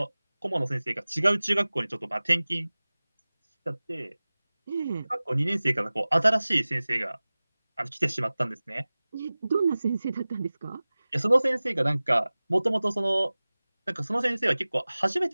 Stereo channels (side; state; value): both; inverted; correlation -0.98